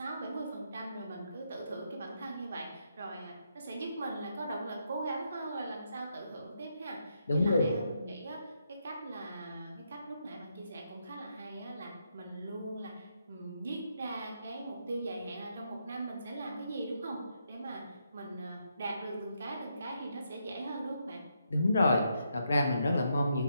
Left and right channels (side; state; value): both; inverted; correlation -0.79